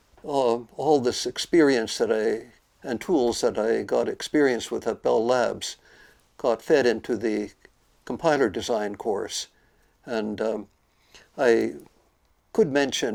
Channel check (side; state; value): both; identical; correlation 1.00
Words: all this experience and tools that I got experience with at Bell Labs got fed into the compiler design course. And I could